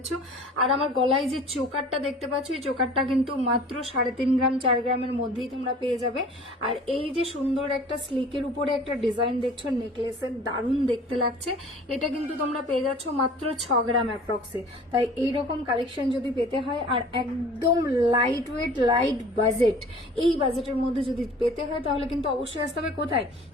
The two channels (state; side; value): normal; both; correlation 0.46